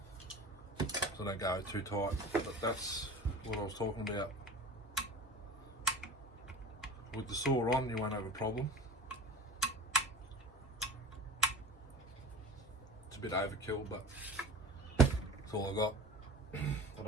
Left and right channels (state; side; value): normal; both; correlation 0.36